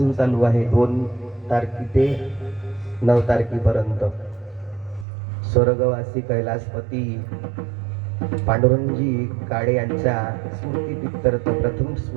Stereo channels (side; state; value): left; drops out; at 5.1 s